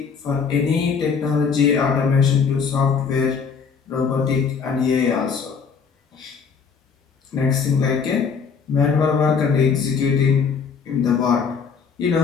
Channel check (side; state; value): right; quieter; 5.9 dB